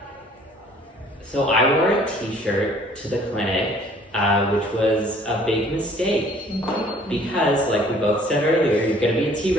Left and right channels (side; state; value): both; normal; correlation 0.56